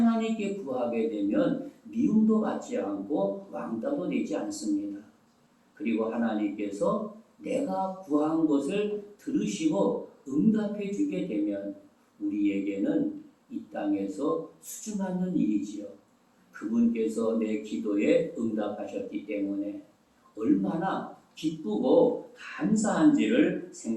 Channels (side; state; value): both; identical; correlation 1.00